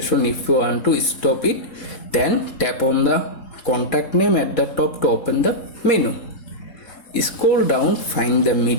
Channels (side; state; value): right; late; 3.7 ms